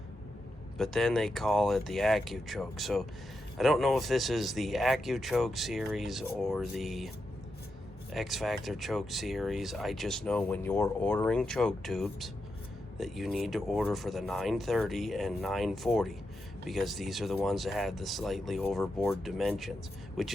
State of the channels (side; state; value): both; normal; correlation 0.86